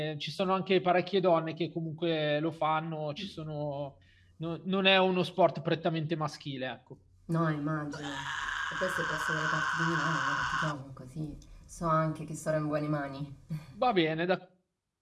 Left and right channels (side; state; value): both; identical; correlation 1.00